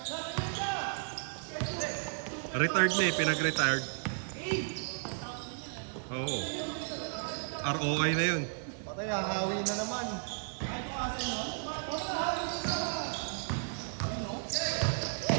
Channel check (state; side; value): silent; left; digital silence